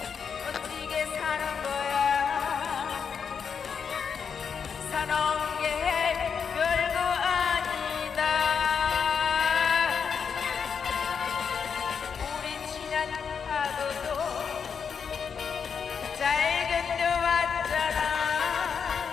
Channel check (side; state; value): right; quieter; 6.5 dB